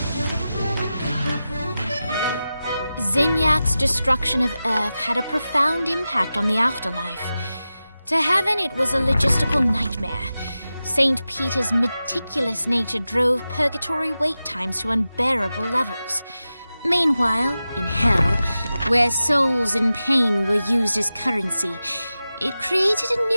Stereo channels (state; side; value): inverted; both; correlation -0.94